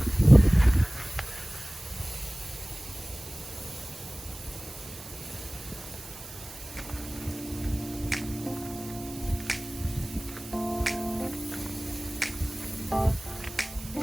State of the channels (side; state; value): right; noise; hiss, 15 dB below the sound